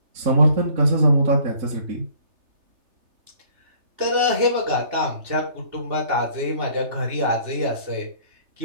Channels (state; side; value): late; left; 3.3 ms